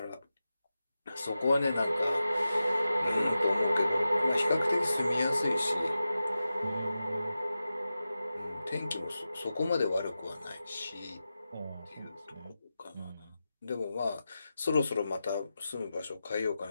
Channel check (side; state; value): both; inverted; correlation -0.92